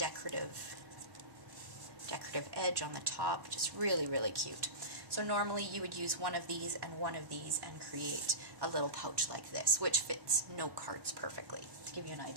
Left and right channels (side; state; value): left; late; 1.1 ms